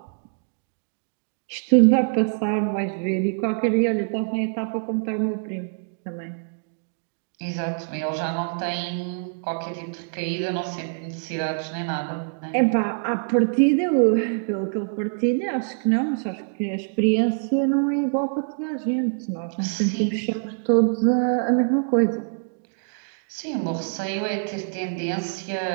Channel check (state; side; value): silent; left; digital silence